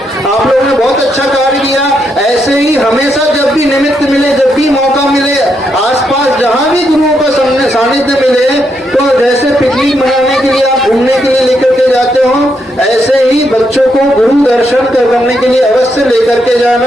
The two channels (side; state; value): both; normal; correlation 0.79